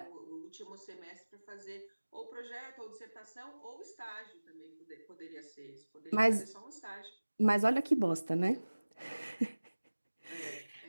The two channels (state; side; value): inverted; both; correlation -1.00